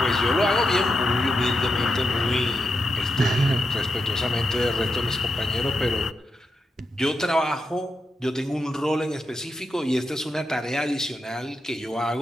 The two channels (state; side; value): normal; both; correlation 0.86